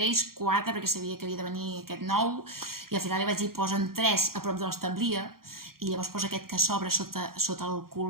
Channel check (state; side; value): late; left; 0.93 ms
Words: 4, perquè sabia que havia de venir aquest nou, i al final li vaig dir posen 3 a prop de l'establia, i llavors posa aquest que s'obre sota el